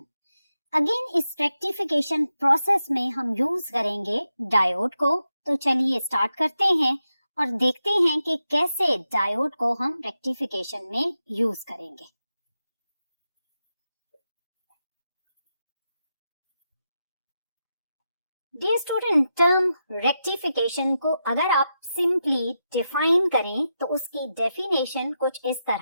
अगेन इस रेक्टिफिकेशन प्रोसेस में हम यूज करेंगे डायोड को। तो चलिए स्टार्ट करते हैं और देखते हैं कि कैसे डायोड को हम रेक्टिफिकेशन में यूज करेंगे। डियर स्टूडेंट, टर्म रेक्टिफिकेशन को अगर आप सिंपली डिफाइन करें तो उसकी डेफिनेशन कुछ इस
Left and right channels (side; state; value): both; inverted; correlation -0.87